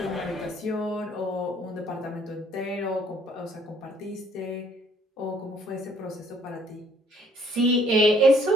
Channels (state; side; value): normal; both; correlation 0.62